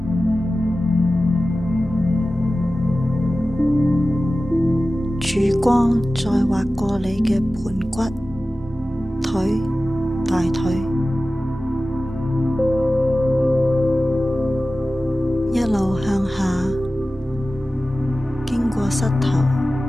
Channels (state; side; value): normal; both; correlation 0.95